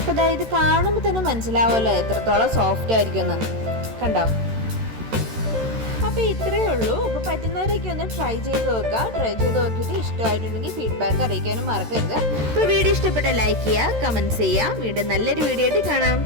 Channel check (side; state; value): left; late; 13 ms